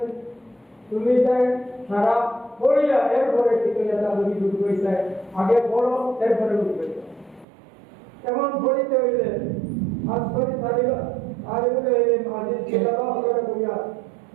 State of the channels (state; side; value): drops out; left; at 7.5 s